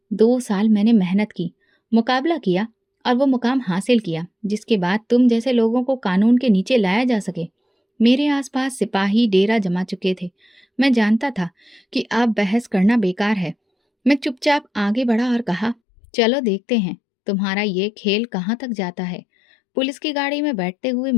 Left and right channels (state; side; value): drops out; right; at 15.8 s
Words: 2 साल मैंने मेहनत की, मुकाबला किया और वो मुकाम हासिल किया जिसके बाद तुम जैसे लोगों को कानून के नीचे लाया जा सके। मेरे आसपास सिपाही डेरा जमा चुके थे। मैं जानता था कि अब बहस करना बेकार है। मैं चुपचाप आगे बढ़ा और कहा, चलो देखते हैं तुम्हारा ये खेल कहाँ तक जाता है। पुलिस की गाड़ी में बैठते हुए